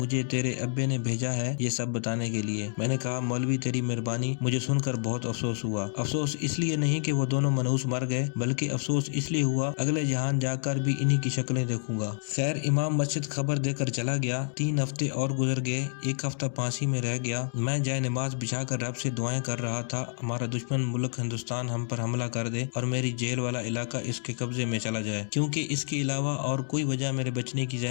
تیرے ابے نے بھیجا ہے یہ سب بتانے کے لیے۔ میں نے کہا مولوی تیری مہربانی۔ مجھے سن کر بہت افسوس ہوا۔ افسوس اس لیے نہیں کہ وہ دونوں منحوس مر گئے، بلکہ افسوس اس لیے ہوا اگلے جہان جا کر بھی انہی کی شکلیں دیکھوں گا۔ خیر امام مسجد خبر دے کر چلا گیا۔ 3 ہفتے اور گزر گئے۔ 1 ہفتہ پھانسی میں رہ گیا۔ میں جائے نماز بچھا کر رب سے دعائیں کر رہا تھا ہمارا دشمن ملک ہندوستان ہم پر حملہ کر دے اور میری جیل والا علاقہ اس کے قبضے میں چلا جائے، کیونکہ اس کے علاوہ اور کوئی وجہ میرے بچنے کی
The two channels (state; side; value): silent; right; 59 dB below the other